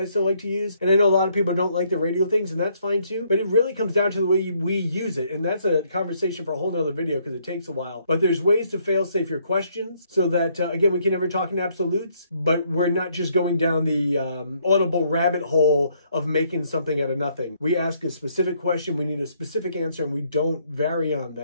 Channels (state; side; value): inverted; both; correlation -0.69